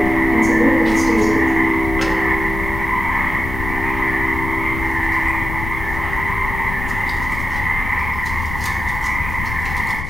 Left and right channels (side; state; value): left; noise; rumble, 7 dB below the sound